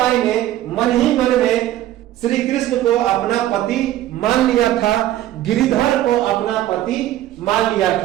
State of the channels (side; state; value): left; quieter; 13.6 dB